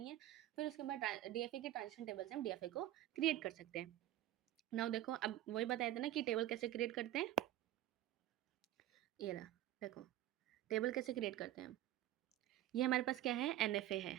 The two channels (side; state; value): left; quieter; 13.9 dB